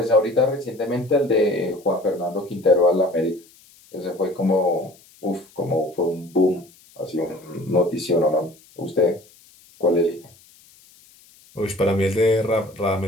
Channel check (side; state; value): left; noise; hiss, 27 dB below the sound